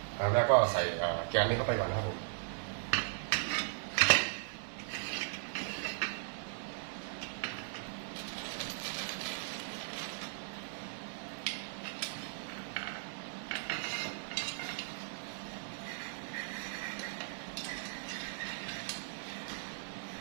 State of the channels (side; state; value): left; silent; 53 dB below the other